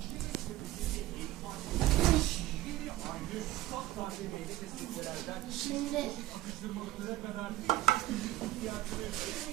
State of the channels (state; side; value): quieter; left; 16.1 dB